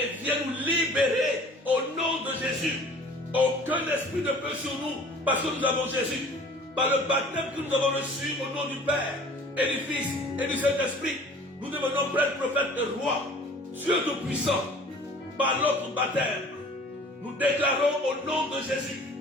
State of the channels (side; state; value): both; normal; correlation 0.48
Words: viens nous libérer au nom de Jésus. Aucun esprit ne peut sur nous parce que nous avons Jésus. Par le baptême que nous avons reçu au nom du Père et du Fils et du Saint-Esprit, nous devenons prêtres, prophètes et rois, Dieu Tout-Puissant. Par notre baptême, nous déclarons au nom de Jésus